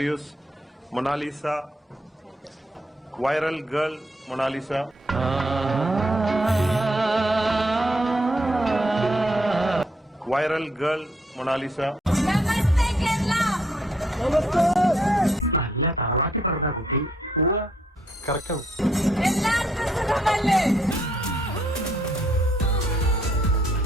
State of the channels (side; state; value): both; normal; correlation 0.72